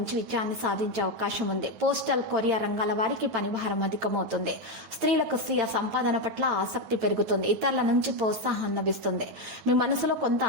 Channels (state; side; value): late; left; 8.9 ms